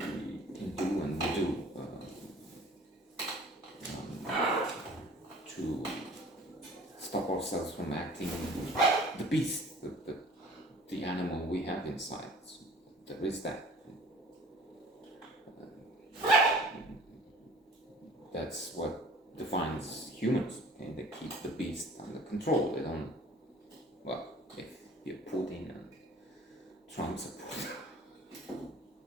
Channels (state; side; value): normal; both; correlation 0.49